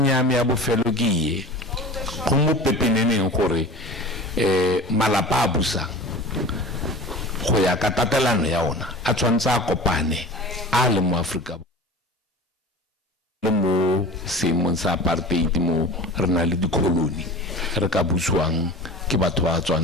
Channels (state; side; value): normal; both; correlation 0.36